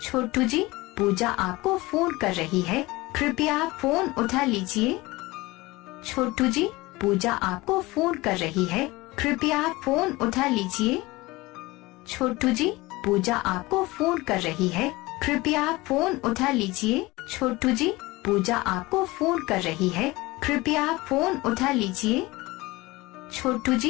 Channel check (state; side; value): quieter; right; 21.1 dB